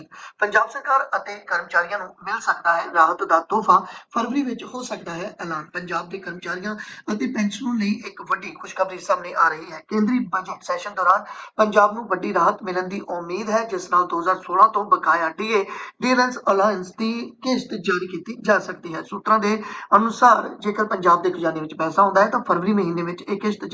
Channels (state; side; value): identical; both; correlation 1.00